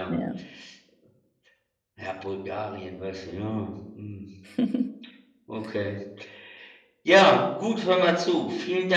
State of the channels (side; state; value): both; identical; correlation 1.00